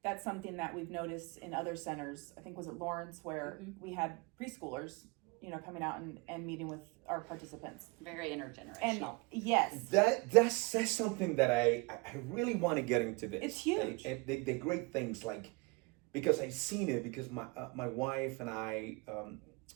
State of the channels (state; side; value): quieter; left; 27.5 dB